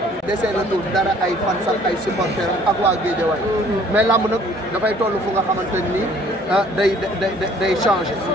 desee na tur dara ay fan sax ay supporters ak waa Guédiawaye mais lamb nag dafay toll fu nga xamante ni day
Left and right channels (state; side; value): normal; both; correlation 0.57